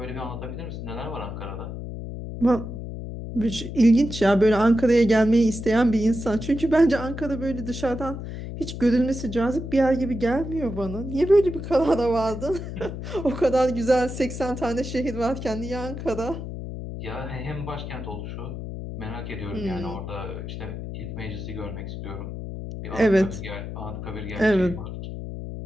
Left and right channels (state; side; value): noise; left; hum, 8 dB below the sound